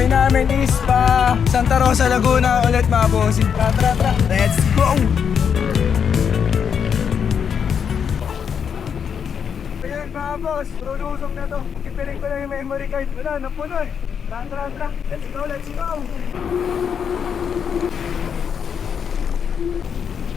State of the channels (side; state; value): right; quieter; 7.3 dB